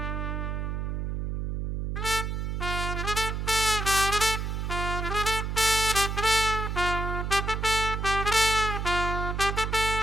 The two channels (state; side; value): noise; right; hum, 2 dB below the sound